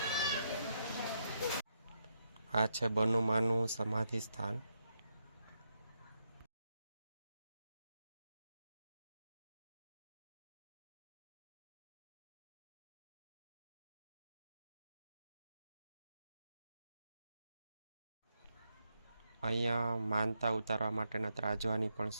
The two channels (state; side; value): inverted; both; correlation -0.82